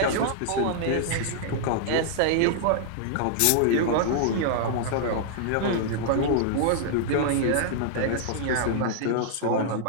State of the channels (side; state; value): both; different; correlation -0.01